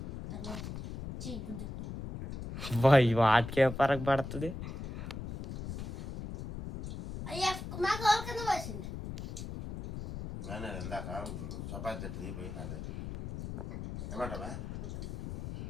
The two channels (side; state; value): left; noise; rumble, 7 dB below the sound